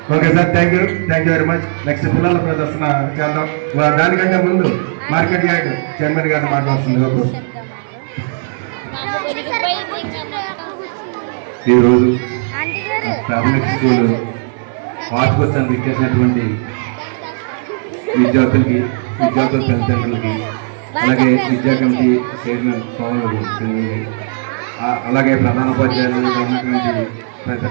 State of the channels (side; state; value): left; silent; 58 dB below the other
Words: Okay sir, thank you very much. Next పిల్లల ప్రదర్శన చేద్దాం. దానికంటే ముందు మార్కెట్ యార్డ్ చైర్మన్ గారిని మాట్లాడుతుందిగా కోరుతున్నాను. ఈరోజు ప్రాథమిక స్కూల్ వార్షికోత్సవానికి ఇచ్చేసినటువంటి విద్యార్థుల తల్లిదండ్రులకి, అలాగే విద్యా కమిటీ చైర్మన్ పవన్ సింగ్, అలాగే ప్రధానోపాధ్యాయులు ఉన్నటువంటి పెద్ద